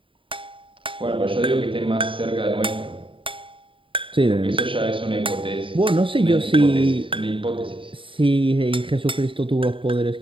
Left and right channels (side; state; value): left; late; 0.25 ms